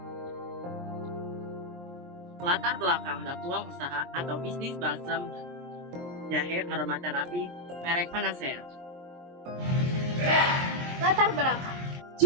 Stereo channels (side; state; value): left; late; 23 ms